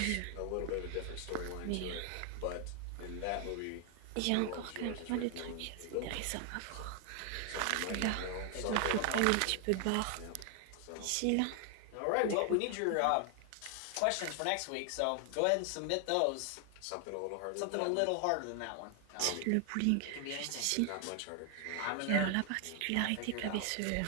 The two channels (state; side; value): different; both; correlation 0.00